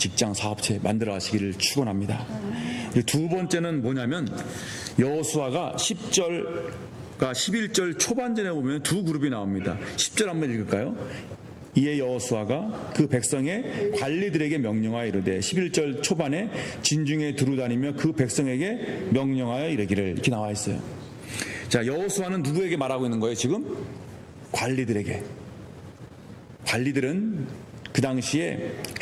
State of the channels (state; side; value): identical; both; correlation 1.00